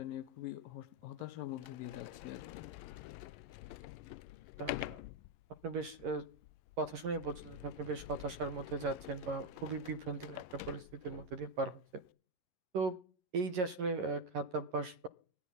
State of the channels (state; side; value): late; left; 11 ms